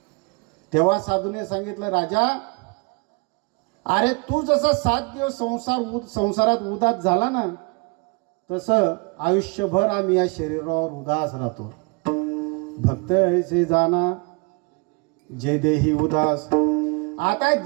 तेव्हा साधूने सांगितलं, राजा अरे तू जसा 7 दिवस संसारात उदास झाला ना, तसं आयुष्यभर आम्ही या शरीरावर उदास राहतो. भक्त ऐसे जाना जे देही उदास. आता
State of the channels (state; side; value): quieter; left; 31.4 dB